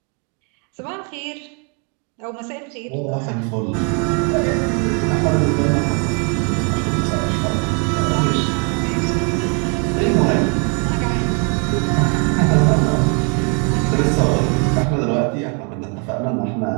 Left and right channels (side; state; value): left; quieter; 37.5 dB